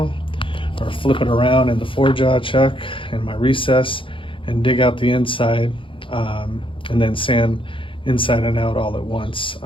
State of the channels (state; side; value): late; right; 0.25 ms